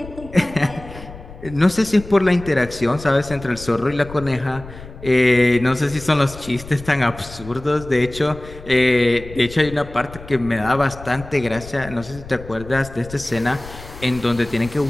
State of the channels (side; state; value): left; noise; rumble, 16 dB below the sound